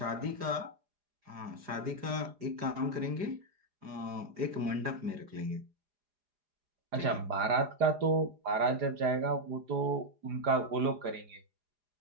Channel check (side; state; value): left; late; 4.9 ms